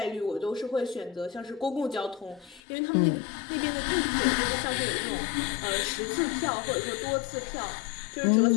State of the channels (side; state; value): right; drops out; at 2.6 s